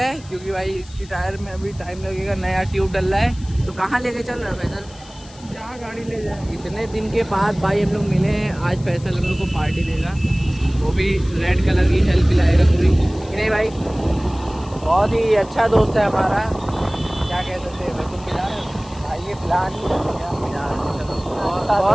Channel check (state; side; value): noise; left; hiss, 22 dB below the sound